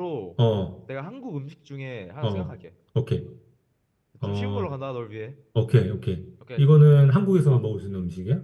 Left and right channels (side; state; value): both; identical; correlation 1.00